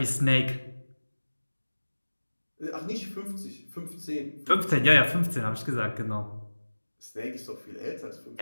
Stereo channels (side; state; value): both; inverted; correlation -1.00